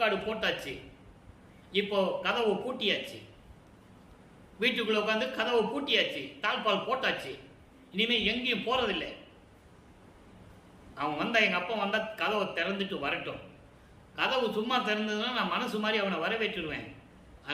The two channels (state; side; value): identical; both; correlation 1.00